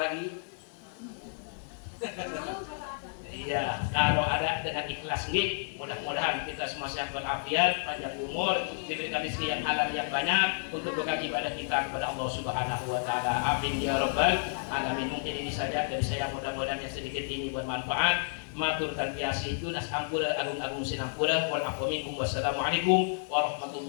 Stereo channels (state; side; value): silent; right; 57 dB below the other